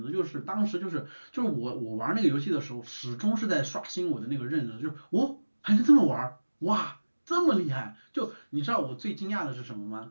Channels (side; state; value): both; inverted; correlation -1.00